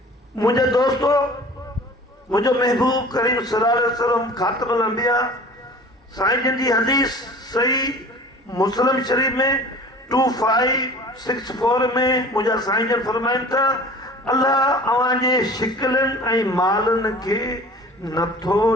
मुंहिंजा दोस्तो, मुंहिंजो महबूब करीम सल्लल्लाहु अलैहि वसल्लम ख़ातिमुल अंबिया साईं जन जी हदीस सही मुस्लिम शरीफ में 2564 में मुंहिंजा साईं जन फरमाइनि था, अल्लाह अव्हांजे शिकिलनि ऐं मालनि खे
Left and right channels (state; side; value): normal; both; correlation 0.43